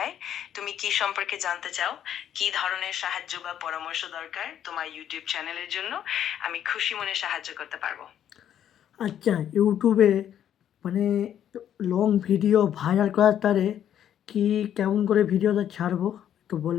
তুমি কি সম্পর্কে জানতে চাও? কি ধরনের সাহায্য বা পরামর্শ দরকার তোমার ইউটিউব চ্যানেলের জন্য? আমি খুশি মনে সাহায্য করতে পারবো। আচ্ছা, ইউটিউবে মানে লং ভিডিও ভাইরাল করার তারে কি কেমন করে ভিডিওটা ছাড়বো একটু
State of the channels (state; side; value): quieter; right; 10.1 dB